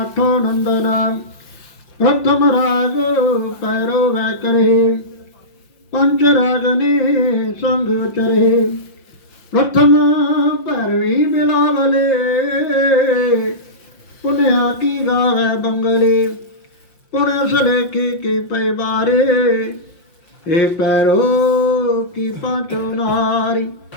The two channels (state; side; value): late; right; 5.7 ms